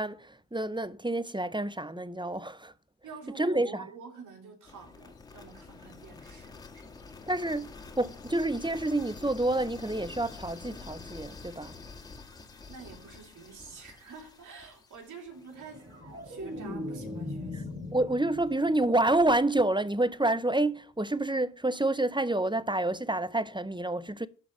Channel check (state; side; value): normal; both; correlation 0.66